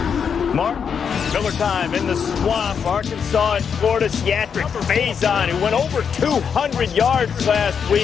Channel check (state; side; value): quieter; right; 6.9 dB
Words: Mark, Miller time in the swamp. Arkansas and Florida Seatric Faison, who went over 200 yards last